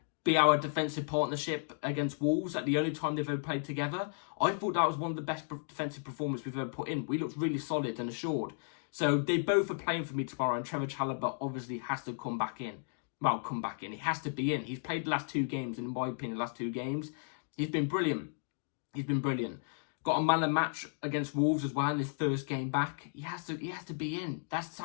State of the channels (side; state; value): right; silent; digital silence